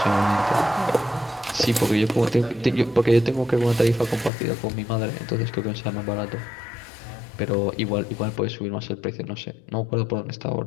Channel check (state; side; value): drops out; right; at 4.3 s